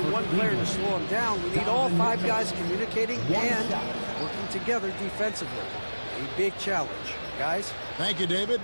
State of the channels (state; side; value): inverted; both; correlation -1.00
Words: one player to slow him down. We need all 5 guys communicating and working together defensively. A big challenge. Guys? Thank you, David.